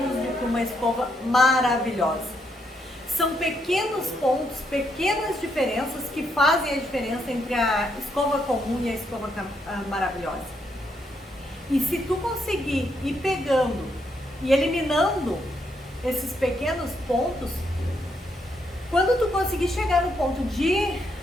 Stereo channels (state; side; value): normal; both; correlation 0.77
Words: do que uma escova maravilhosa. São pequenos pontos, pequenas diferenças que fazem a diferença entre a escova comum e a escova maravilhosa. E se tu conseguir ir pegando e eliminando esses pequenos pontos, quando tu conseguir chegar no ponto de